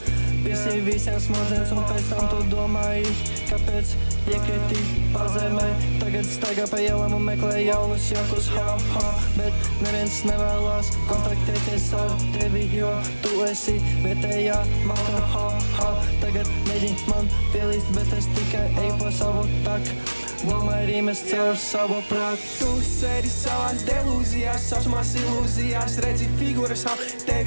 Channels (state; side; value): inverted; both; correlation -1.00